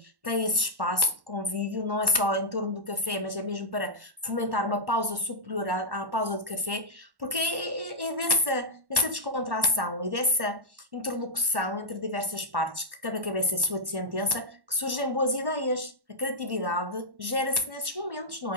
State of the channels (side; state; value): left; late; 1.1 ms